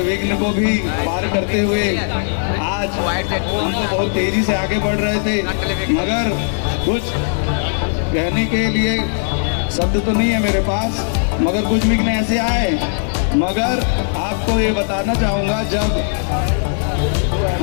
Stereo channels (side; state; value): right; silent; digital silence